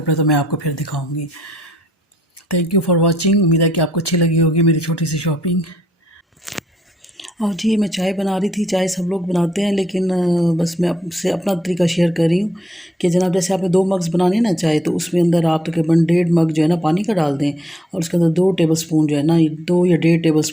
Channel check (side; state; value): both; normal; correlation 0.72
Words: तो मैं आपको फिर दिखाऊँगी। थैंक यू फॉर वॉचिंग, उम्मीद है कि आपको अच्छी लगी होगी मेरी छोटी सी शॉपिंग। और जी मैं चाय बना रही थी, चाय सब लोग बनाते हैं, लेकिन बस मैं आपसे अपना तरीका शेयर कर रही हूँ कि जनाब जैसे आपने 2 मग्स बनाने ना चाय, तो उसमें अंदर आप तकरीबन 1.5 मग जो है ना पानी का डाल दें, और उसके अंदर 2 टेबल स्पून जो है ना, 2 या 1.5 टेबल